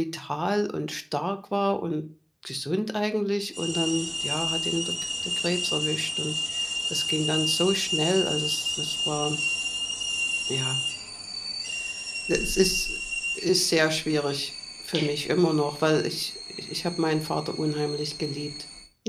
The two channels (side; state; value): both; identical; correlation 1.00